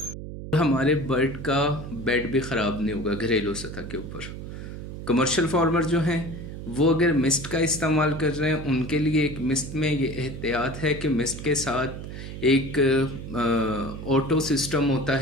हमारे बर्ड का बेड भी ख़राब नहीं होगा घरेलू सतह के ऊपर। कमर्शियल फार्मर जो हैं वो अगर मिस्ट का इस्तेमाल कर रहे हैं, उनके लिए एक मिस्ट में ये एहतियात है कि मिस्ट के साथ एक ऑटो सिस्टम होता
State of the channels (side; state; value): right; noise; hum, 9 dB below the sound